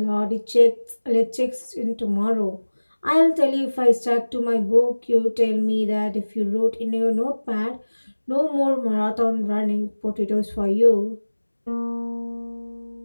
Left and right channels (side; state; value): both; inverted; correlation -1.00